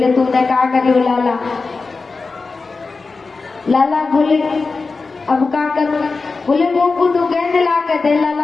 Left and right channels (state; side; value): quieter; right; 4.1 dB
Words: तूने क्या करी लाला? लाला बोले अब क्या करूं? बोले मोकू तू गेंद ला के दे।